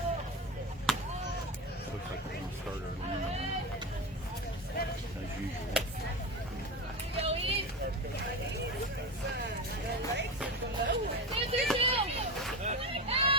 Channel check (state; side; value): normal; both; correlation 0.21